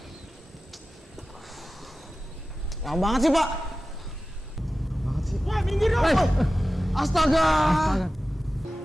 Lama banget sih Pak. Banget sih. Ya minggir dong. Astaga.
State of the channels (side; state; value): both; normal; correlation 0.95